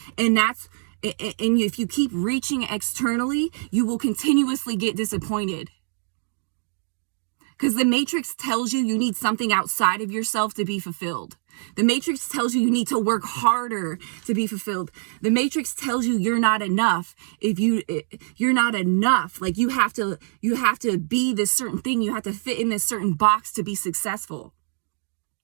And if you keep reaching externally, you will continuously get disappointed. Because the Matrix tells you need something outside of yourself to be fulfilled. The Matrix tells you need to work harder to be fulfilled. The Matrix tells you you're not enough. If you're not enough, like you have to be this certain thing. You have to fit in this certain box to be successful.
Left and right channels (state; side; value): silent; left; digital silence